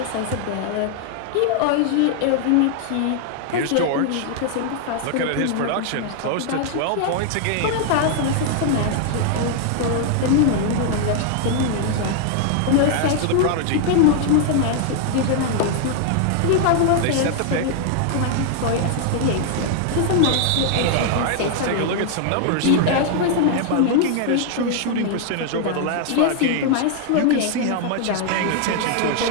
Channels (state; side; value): different; both; correlation 0.00